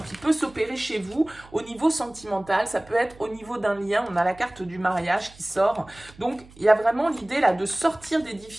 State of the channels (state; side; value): noise; right; hum, 23 dB below the sound